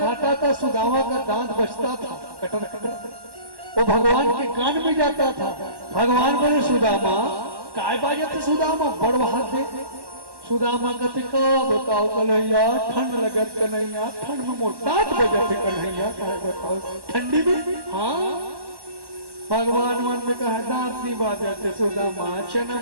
था सुदामा का दांत बचता था, कटर कटर, वो भगवान के कान में जाता था। भगवान बोले सुदामा काय बाजत सुदामा बड़ दे। सुदामा कहते का बताओ कन्हैया, ठंड लगत कन्हैया, ठंड में मोर दांत बजत कन्हैया, काय बताओ ठंडी में। हाँ, भगवान मन में कहा दांत नहीं बाजते सुदामा, चना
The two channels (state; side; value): late; left; 1.1 ms